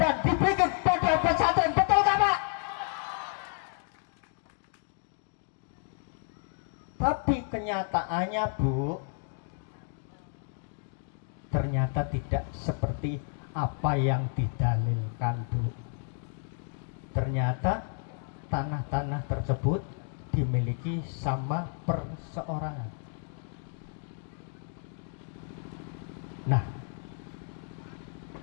dan dibikin pondok pesantren. Betul gak Pak? Tapi kenyataannya Bu, ternyata tidak seperti apa yang didalilkan Bu. Ternyata tanah-tanah tersebut dimiliki sama perseorangan. Nah,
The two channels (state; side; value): silent; right; 57 dB below the other